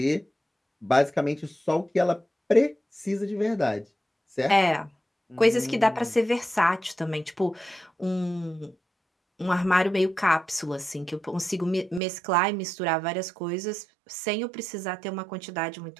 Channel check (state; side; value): drops out; left; at 12.0 s